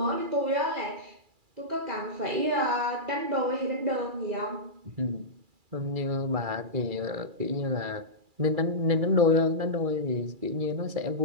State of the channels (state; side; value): late; left; 2.3 ms